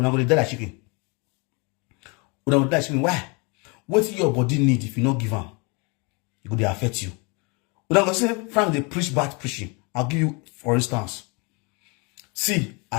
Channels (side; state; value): right; quieter; 30.8 dB